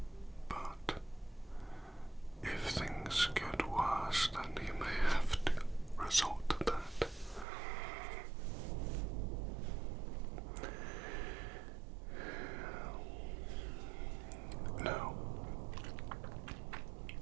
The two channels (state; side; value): drops out; left; at 7.5 s